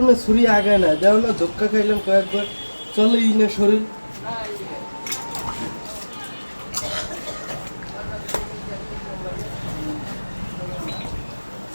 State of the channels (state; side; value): inverted; both; correlation -1.00